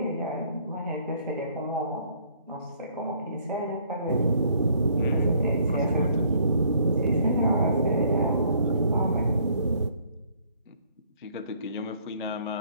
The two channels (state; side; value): inverted; both; correlation -0.63